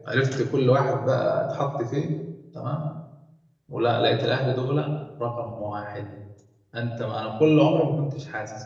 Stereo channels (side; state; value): both; identical; correlation 1.00